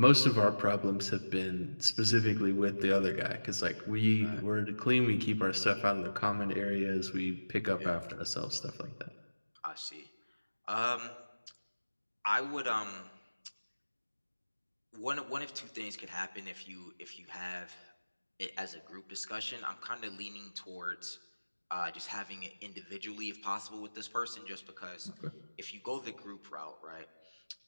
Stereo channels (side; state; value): both; inverted; correlation -1.00